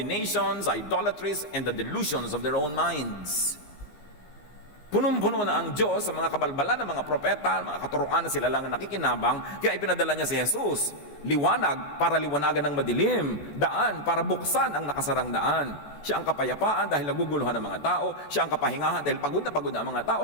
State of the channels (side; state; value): right; late; 14 ms